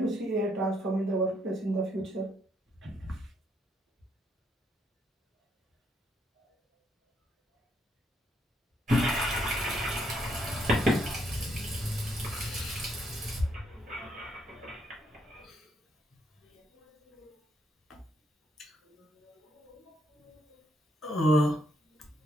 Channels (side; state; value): both; normal; correlation 0.74